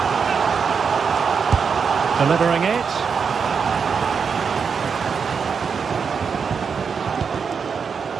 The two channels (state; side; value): quieter; left; 6.1 dB